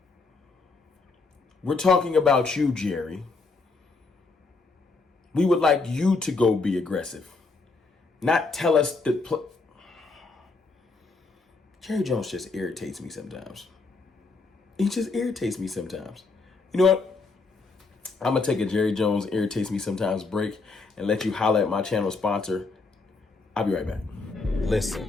We're talking about you, Jerry. We would like you to go be aggressive. Not tell us to Jerry Jones just irritates me sometimes. He just irritates me sometimes. You know what? I'm going to take a Jerry Jones irritates me sometimes break and let you holler at my channel sponsor. I'll be right back.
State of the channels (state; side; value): quieter; right; 4.0 dB